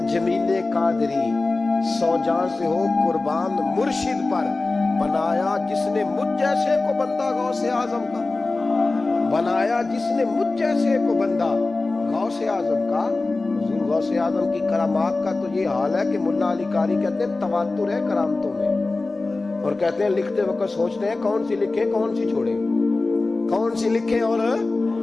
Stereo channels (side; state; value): right; quieter; 3.4 dB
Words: جمیل قادری 100 جان سے ہو قربان مرشد پر، بنایا جس نے مجھ جیسے کو بندہ غوث اعظم کا، بنایا جس نے مجھ جیسے کو بندہ غوث اعظم کا۔ حضور غوث اعظم کی کرامات کا تو یہ حال ہے کہ ملا علی قاری کہتے ہیں تواتر ہے کرامتوں میں، اور کہتے ہیں لکھتے وقت سوچتے ہیں کون سی لکھیں کون سی چھوڑیں، کون سی لکھیں۔ اور